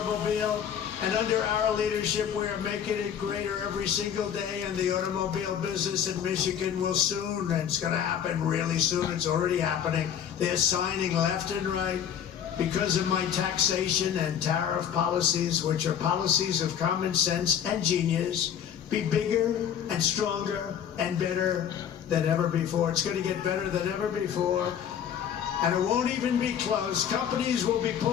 And under our leadership, we are making it greater every single day. And the automobile business in Michigan will soon, and it's going to happen really soon. It's already happening. They're signing left and right because of my taxation and tariff policies, which are policies of common sense and genius. Be bigger and stronger and better than ever before. It's going to get better than ever before. And it won't even be close. Companies will be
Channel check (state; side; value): quieter; right; 8.9 dB